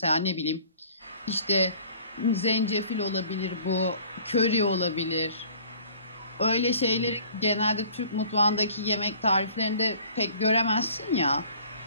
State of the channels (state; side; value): inverted; both; correlation -0.52